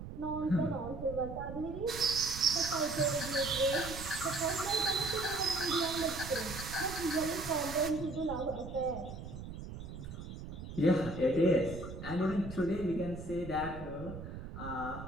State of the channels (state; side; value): noise; right; rumble, 10 dB below the sound